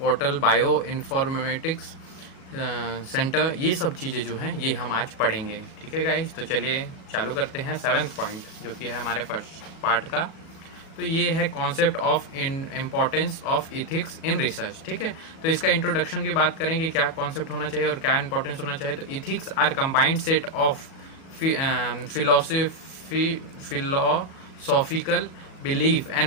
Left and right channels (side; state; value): right; late; 37 ms